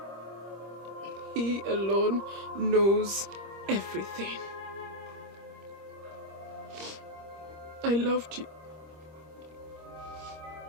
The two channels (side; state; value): left; late; 25 ms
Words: He alone knows everything. I loved you.